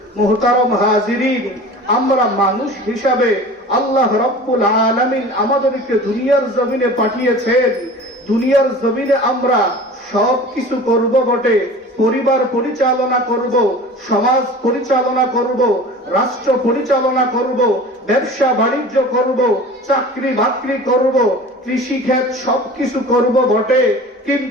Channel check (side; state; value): both; normal; correlation 0.39